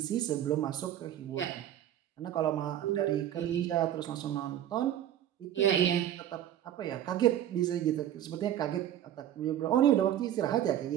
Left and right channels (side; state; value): left; quieter; 11.3 dB